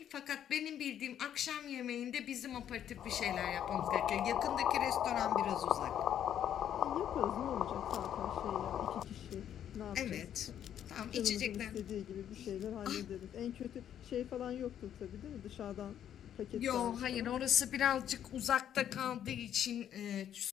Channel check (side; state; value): right; quieter; 10.0 dB